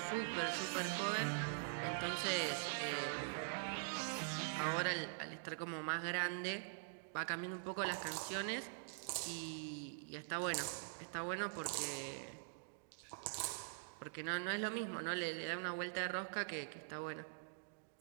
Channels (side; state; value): left; silent; digital silence